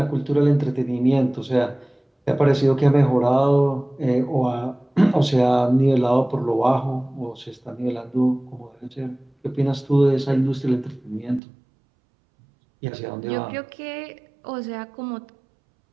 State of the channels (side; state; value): left; drops out; at 11.4 s